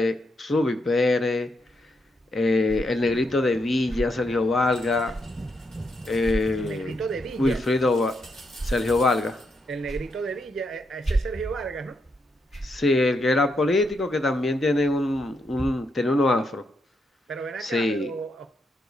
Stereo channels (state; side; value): normal; both; correlation 0.80